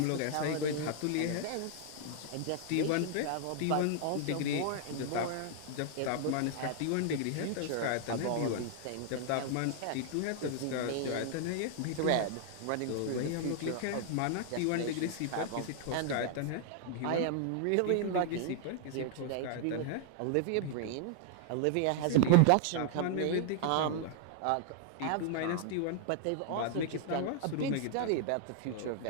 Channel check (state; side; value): different; both; correlation 0.00